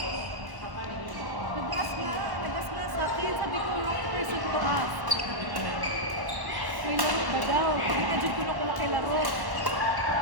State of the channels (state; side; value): late; left; 1.1 ms